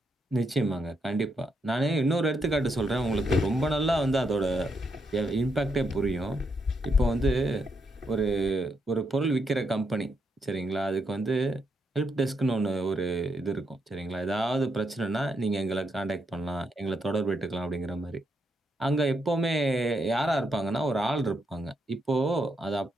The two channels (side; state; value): both; normal; correlation 0.79